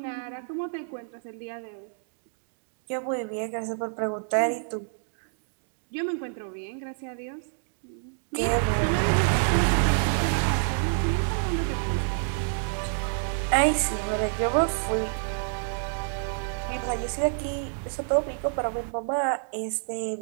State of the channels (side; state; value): left; silent; digital silence